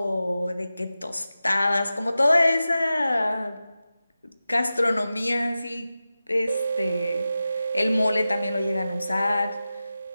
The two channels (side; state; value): both; inverted; correlation -0.93